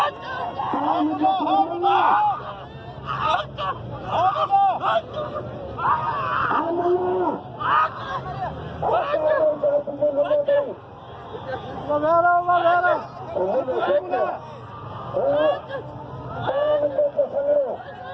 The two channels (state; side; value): identical; both; correlation 1.00